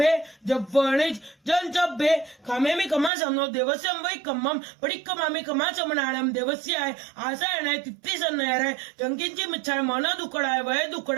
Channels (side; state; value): left; drops out; at 3.1 s